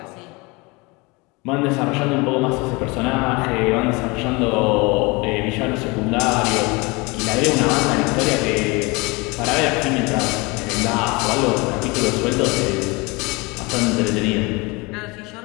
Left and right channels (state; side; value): quieter; right; 26.1 dB